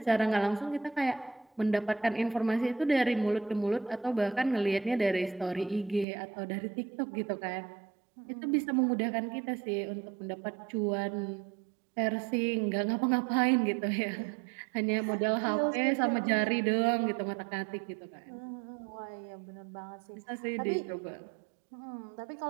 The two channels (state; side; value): drops out; left; at 6.1 s